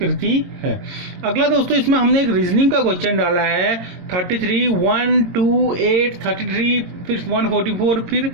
है। अगला दोस्तों इसमें हमने एक रीजनिंग का क्वेश्चन डाला है 33, 1, 2, 8, 33 फिर 144 फिर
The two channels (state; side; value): late; left; 22 ms